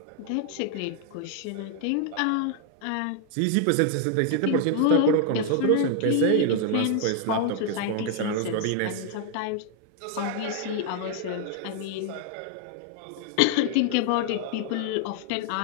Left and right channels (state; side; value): different; both; correlation 0.00